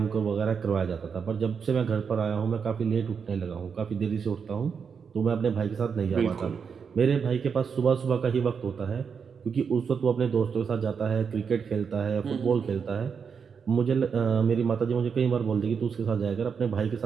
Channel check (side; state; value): left; quieter; 6.3 dB